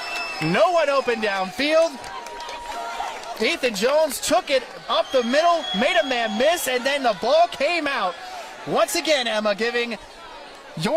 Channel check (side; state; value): both; identical; correlation 1.00